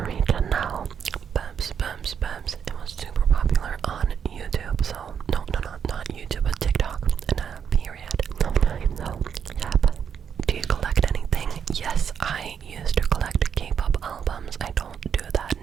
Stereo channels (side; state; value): left; quieter; 7.6 dB